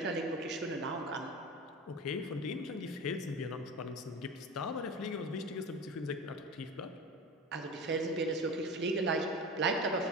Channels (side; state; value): both; normal; correlation 0.30